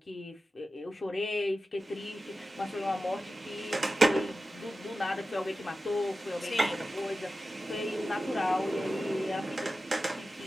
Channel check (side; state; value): both; normal; correlation 0.93